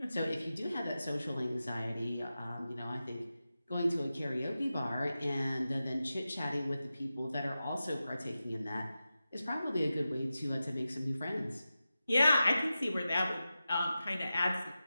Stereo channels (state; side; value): inverted; both; correlation -0.93